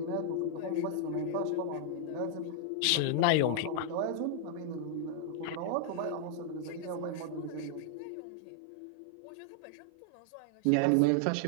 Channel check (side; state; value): both; different; correlation 0.00